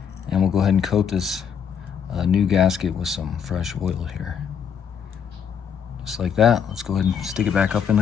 And we'll go ahead and coat this new gasket with some fresh oil here. Just like that. Let's go ahead and stick it back up in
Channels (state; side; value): quieter; right; 7.6 dB